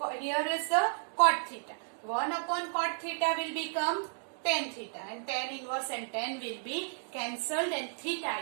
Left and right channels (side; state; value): left; silent; digital silence